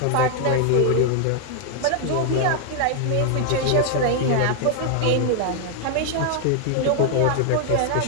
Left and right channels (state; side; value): different; both; correlation 0.00